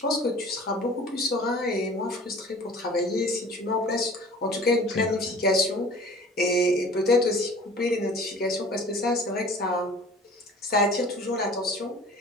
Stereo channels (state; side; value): normal; both; correlation 0.46